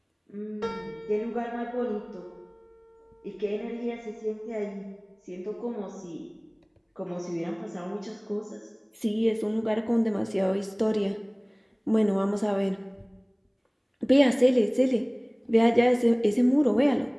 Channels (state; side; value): identical; both; correlation 1.00